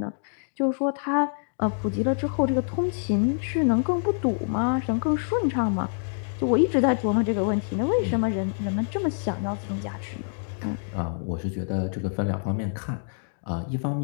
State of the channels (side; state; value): right; silent; digital silence